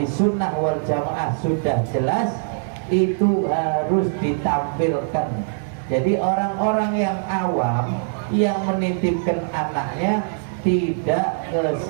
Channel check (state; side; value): silent; left; 64 dB below the other